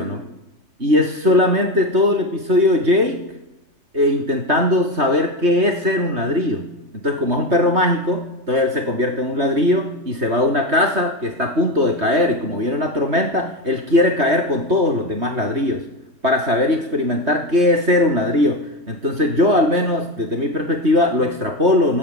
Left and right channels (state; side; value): late; left; 3.2 ms